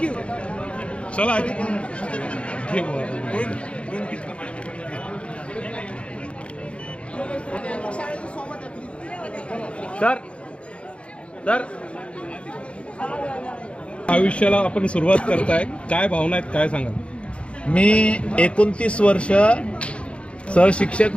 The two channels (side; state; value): right; late; 0.060 ms